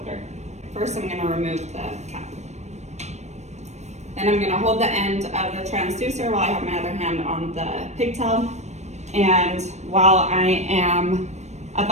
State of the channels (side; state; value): left; late; 0.33 ms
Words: First, I'm going to remove the cap. Then I'm going to hold the end of the transducer while I have my other hand on the pigtail. And while I am